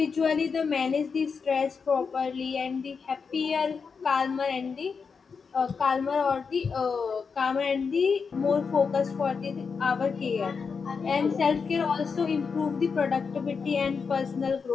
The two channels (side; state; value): right; quieter; 5.5 dB